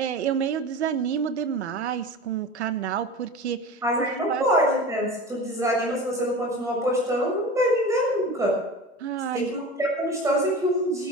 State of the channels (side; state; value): both; normal; correlation 0.33